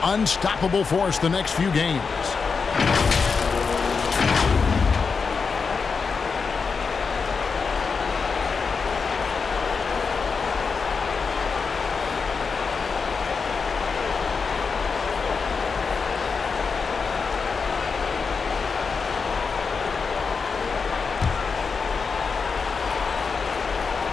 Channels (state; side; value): quieter; right; 5.2 dB